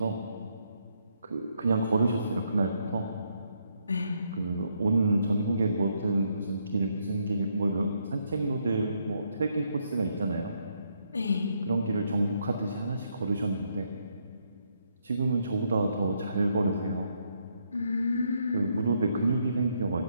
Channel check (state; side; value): inverted; both; correlation -0.75